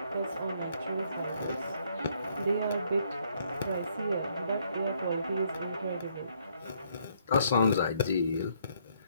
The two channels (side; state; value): both; inverted; correlation -0.69